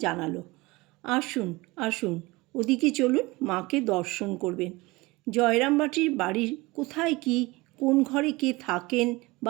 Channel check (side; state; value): left; quieter; 22.4 dB